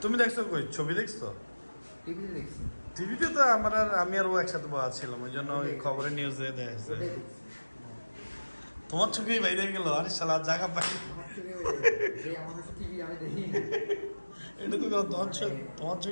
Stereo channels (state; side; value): inverted; both; correlation -1.00